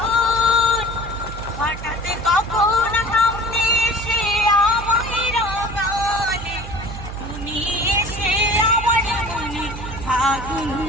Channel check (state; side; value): noise; right; hum, 10 dB below the sound